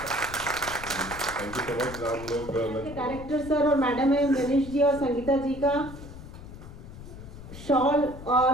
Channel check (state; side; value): noise; left; rumble, 14 dB below the sound